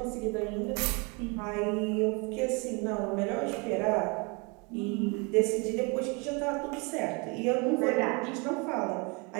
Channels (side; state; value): left; quieter; 30.7 dB